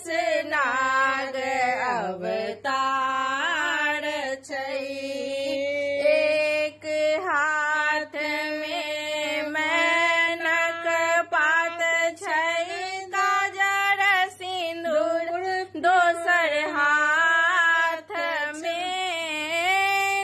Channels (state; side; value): identical; both; correlation 1.00